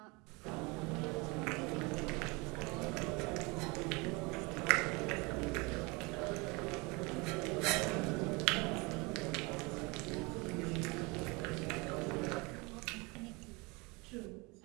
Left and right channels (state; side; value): quieter; left; 27.0 dB